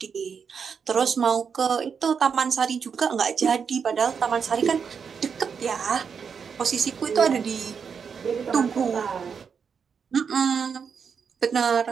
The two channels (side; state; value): left; quieter; 6.4 dB